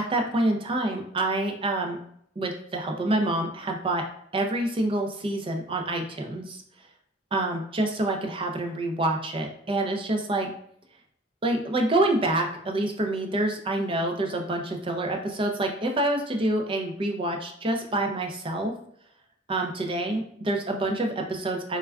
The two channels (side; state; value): both; normal; correlation 0.47